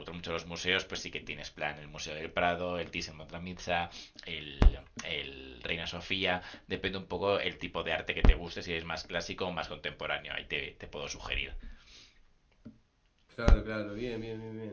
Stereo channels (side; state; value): both; identical; correlation 1.00